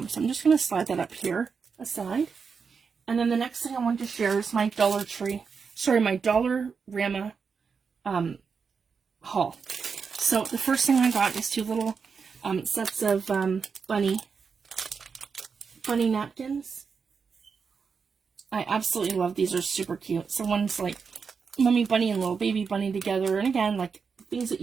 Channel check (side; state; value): left; quieter; 5.7 dB